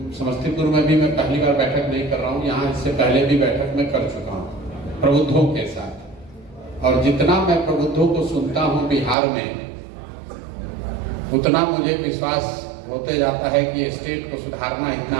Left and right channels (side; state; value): left; drops out; at 9.2 s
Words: समस्तीपुर में भी मैं पहली बार बैठक नहीं कर रहा हूँ, यहाँ इससे पहले भी बैठक में कर चुका हूँ प्रबुद्धों के साथ। और जितना मैं प्रबुद्धों को सुनता हूँ बिहार में, उतना मुझे विश्वास होते जाता है कि स्टेट को सुधारना इतना